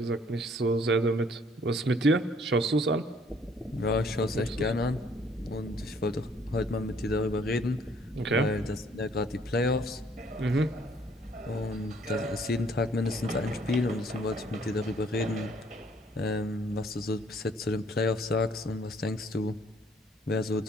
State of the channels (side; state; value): both; normal; correlation 0.62